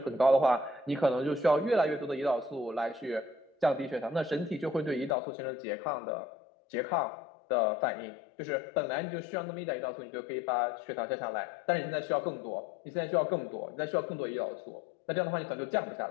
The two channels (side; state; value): right; drops out; at 5.2 s